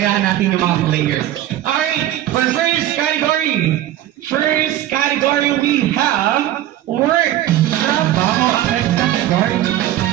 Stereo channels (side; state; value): left; quieter; 13.1 dB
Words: natin yung mga player. Alright, for first category we have work. Bago ang next category.